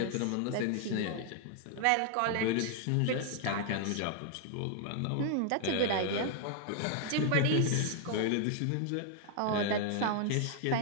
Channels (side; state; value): both; different; correlation 0.00